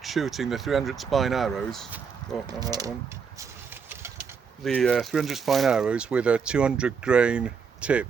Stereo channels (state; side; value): quieter; left; 6.1 dB